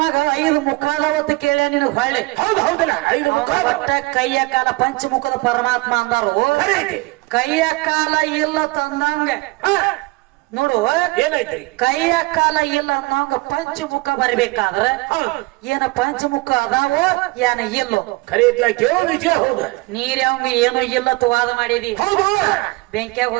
5 ಮುಖದವತ್ತು ಕೇಳ್ಯ ನಿನಗ್ ಹೊಳ್ಳಿ. ಒಟ್ಟ ಕೈಯ ಕಾಲ ಪಂಚಮುಖದ ಪರಮಾತ್ಮ ಅಂದಾರು. ಕೈಯ ಕಾಲ ಇಲ್ಲ ತಂದಂಗ ನೋಡು ಏನೈತ್ರಿ? ಕೈಯ ಕಾಲ ಇಲ್ಲ ಅನ್ನೋಂಗ ಪಂಚಮುಖ ಬರಬೇಕಾದ್ರ ಏನ ಪಂಚಮುಖ ಅದಾವೋ ಏನ ಇಲ್ಲೋ ನೀರ್ ಅವಂಗ ಏನೋ ಇಲ್ಲ ವಾದ ಮಾಡಿದಿ. ಬೆಂಕಿಯಾಗ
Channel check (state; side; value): quieter; left; 23.3 dB